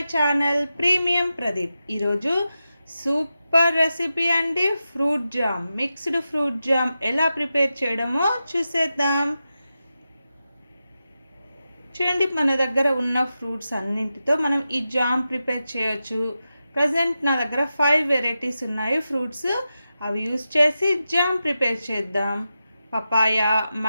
channel premium Pradeep. ఈరోజు super recipe అండి, fruit jam, mixed fruit jam ఎలా prepare చేయడమో చూసేద్దాం. చూడండి, మన దగ్గర ఉన్న ఫ్రూట్స్ అన్నింటితో మనం ఈ జామ్ ప్రిపేర్ చేయొచ్చు. ప్రజెంట్ నా దగ్గర 5 వెరైటీస్ ఉన్నాయి ఫ్రూట్స్. అవి యూస్ చేసి జామ్ ప్రిపేర్ చేద్దాం. పపాయ,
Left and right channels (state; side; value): inverted; both; correlation -0.91